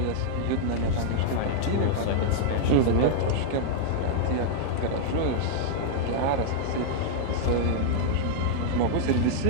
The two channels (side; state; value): both; different; correlation -0.01